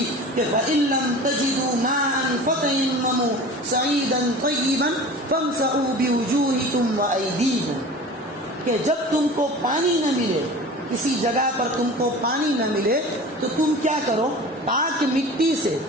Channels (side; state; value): both; normal; correlation 0.38